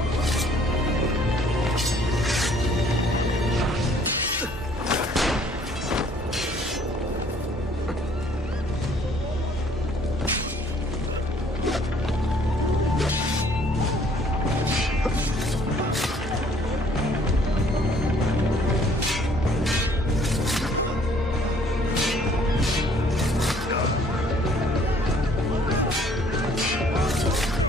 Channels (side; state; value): both; normal; correlation 0.59